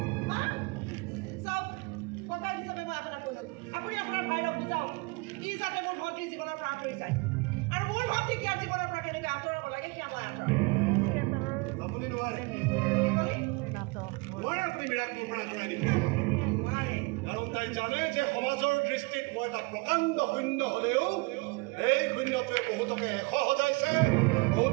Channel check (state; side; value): quieter; left; 27.4 dB